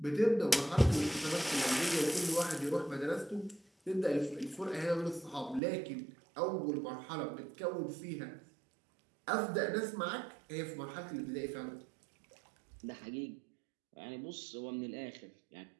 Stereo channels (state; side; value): drops out; left; at 5.6 s